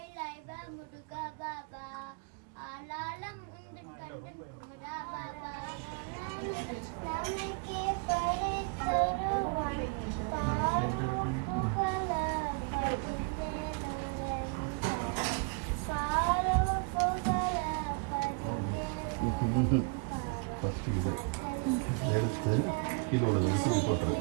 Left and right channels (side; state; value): left; quieter; 35.4 dB